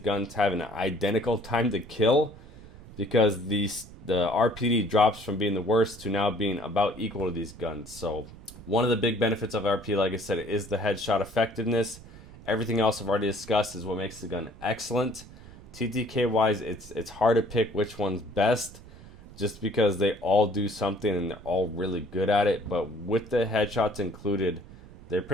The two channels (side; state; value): right; noise; rumble, 19 dB below the sound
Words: have an identical time to kill because the RPD drops from being the worst to now being about equal to these guns. So one of the big benefits of RPD, like I said, is the headshot effectiveness. Everything else I've already discussed is what makes the gun excellent. TTK wise, it's hard to pick which one's best, just because they all do something and they're all really good at it. But with the headshots included, they